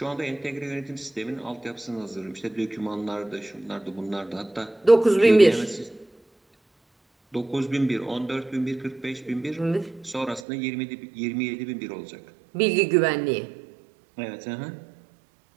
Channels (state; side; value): drops out; left; at 10.4 s